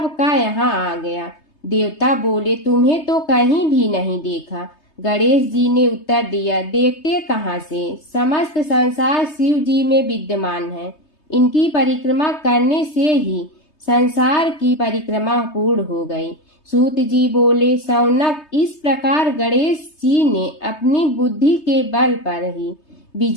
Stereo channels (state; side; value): late; right; 3.3 ms